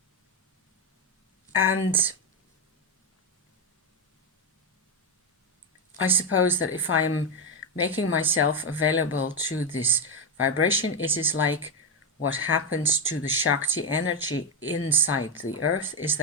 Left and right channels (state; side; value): normal; both; correlation 0.06